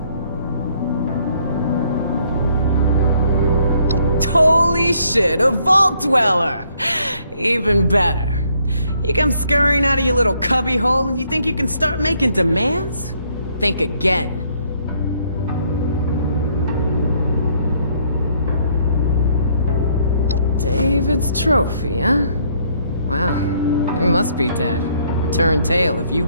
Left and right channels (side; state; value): both; inverted; correlation -0.67